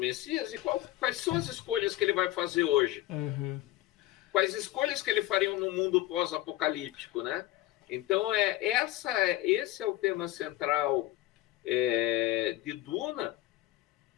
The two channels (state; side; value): quieter; right; 16.0 dB